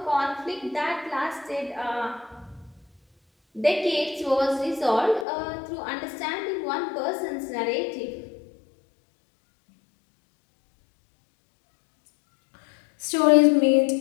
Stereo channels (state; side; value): drops out; right; at 5.2 s